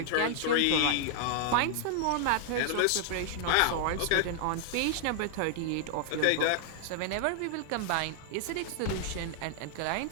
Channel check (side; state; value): both; different; correlation -0.01